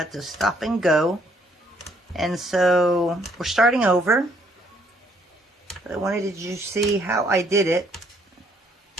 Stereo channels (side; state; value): both; normal; correlation 0.68